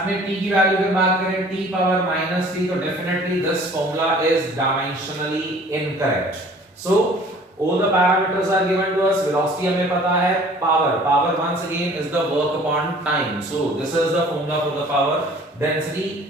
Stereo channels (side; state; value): both; normal; correlation 0.51